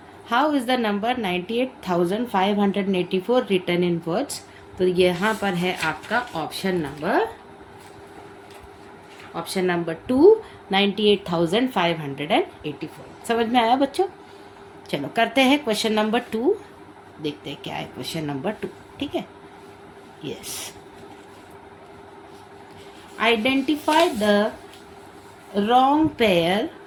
how is the number 98,584 written in words? तो यहाँ पर है आपका ऑप्शन नंबर 2, 98,584। समझ में आया बच्चों? चलो करते हैं क्वेश्चन नंबर 2, देखते हैं क्या है क्वेश्चन नंबर 2, ठीक है। Yes, identify the wrong pair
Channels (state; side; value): identical; both; correlation 1.00